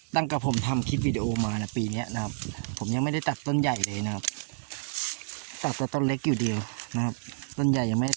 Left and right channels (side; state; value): left; silent; 59 dB below the other